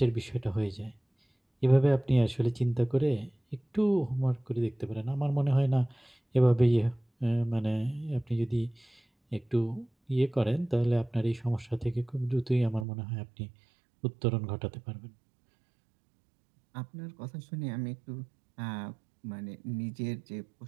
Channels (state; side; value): drops out; left; at 12.9 s